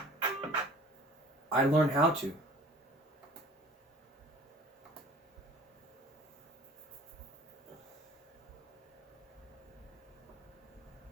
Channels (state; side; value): normal; both; correlation 0.47